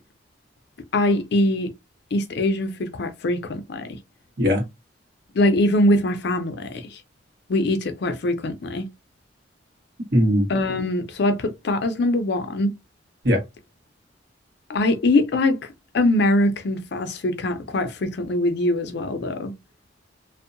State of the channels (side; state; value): both; normal; correlation 0.48